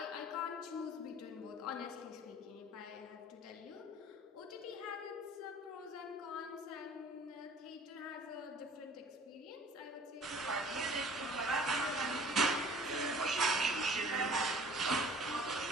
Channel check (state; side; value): normal; both; correlation 0.48